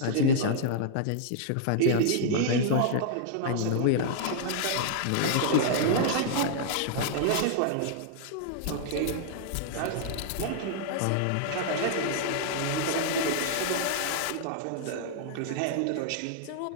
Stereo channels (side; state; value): both; different; correlation -0.01